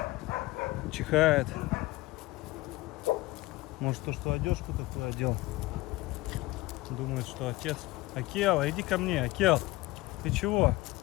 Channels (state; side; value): quieter; right; 19.5 dB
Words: чихает. Может, то, что одежку такую одел, думает, что отец. Акела, иди ко мне, Акел, ты чего?